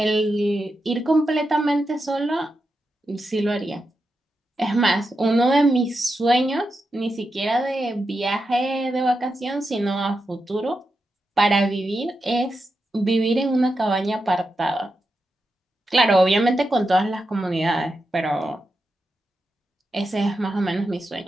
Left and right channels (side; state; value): both; normal; correlation 0.88